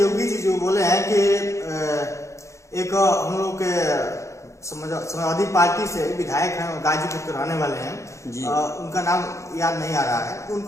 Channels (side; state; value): right; late; 0.14 ms